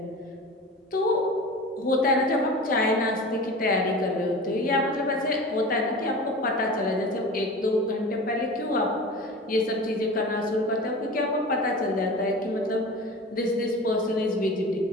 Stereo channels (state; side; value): normal; both; correlation 0.34